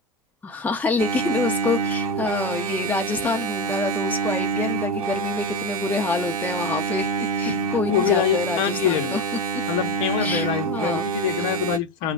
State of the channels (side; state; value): both; normal; correlation 0.19